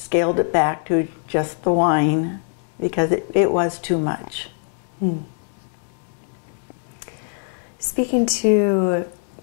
it back to just the wine because it was too much. Speaking to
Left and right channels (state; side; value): silent; right; digital silence